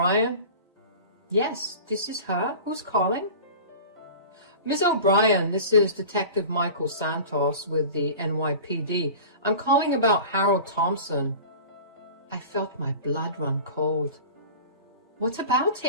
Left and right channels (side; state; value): both; inverted; correlation -0.37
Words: Yes, this is her. Who's calling? Miss O'Brien, this is Detective Michael Santos with the NYPD. I'm calling about Harold Thompson. I felt my blood run cold. What about